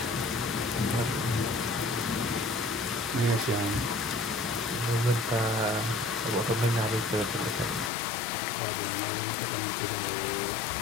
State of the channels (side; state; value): right; drops out; at 7.9 s